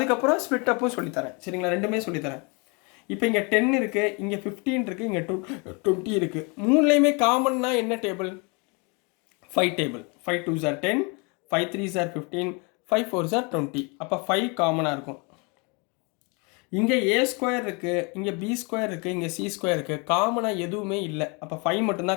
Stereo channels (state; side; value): quieter; right; 31.5 dB